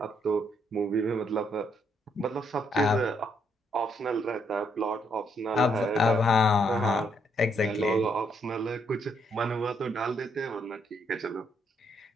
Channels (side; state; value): both; normal; correlation 0.73